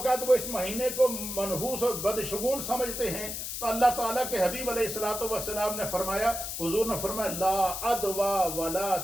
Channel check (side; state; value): left; noise; hiss, 5 dB below the sound